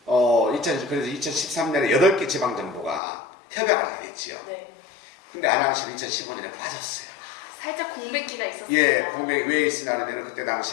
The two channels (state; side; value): drops out; right; at 3.0 s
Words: 그래서 2013년에 8개 지방정부가 협약을 하게 됐지요. 네. 근데 안양시는 2015년에 빠졌어요. 살짝 공백기가 있었습니다. 예, 공백이 왜 있으냐면 그때